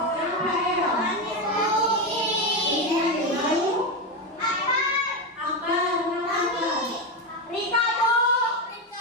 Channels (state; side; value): normal; both; correlation 0.12